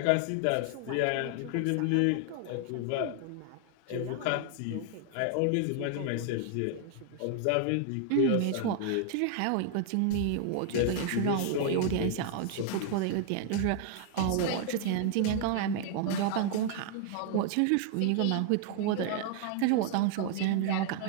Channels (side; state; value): both; different; correlation 0.00